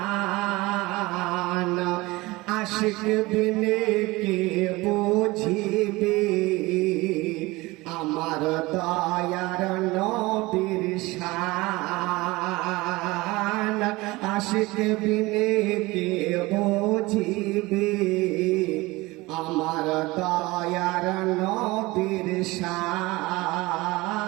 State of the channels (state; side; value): quieter; left; 21.4 dB